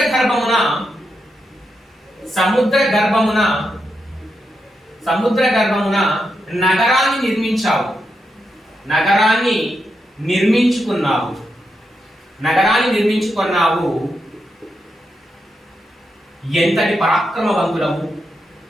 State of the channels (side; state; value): both; normal; correlation 0.85